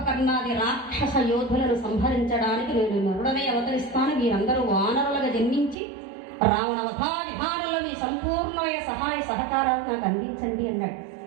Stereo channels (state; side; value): drops out; left; at 5.8 s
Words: రాక్షస యోధులను సంహరించడానికి నేను నరుడనే అవతరిస్తాను. మీరందరూ వానరులుగా జన్మించి రావణ వధా విధానంలో మీ సంపూర్ణమైన సహాయ సహకారాలు నాకు అందించండి అన్నాడు.